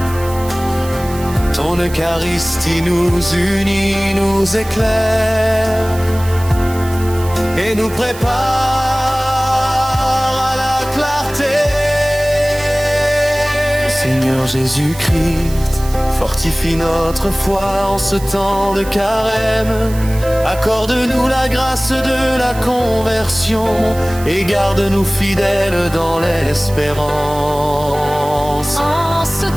Ton Eucharistie nous unit, nous éclaire et nous prépare à la clarté. Seigneur Jésus-Christ, fortifie notre foi en ce temps de carême. Accorde-nous la grâce de la conversion et garde-nous fidèles dans l'espérance. en ce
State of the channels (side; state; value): right; noise; hiss, 16 dB below the sound